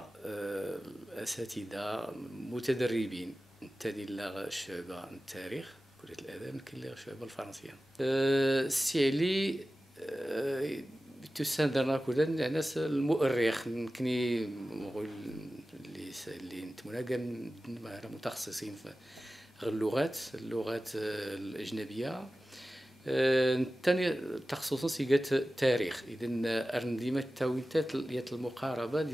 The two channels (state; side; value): normal; both; correlation 0.95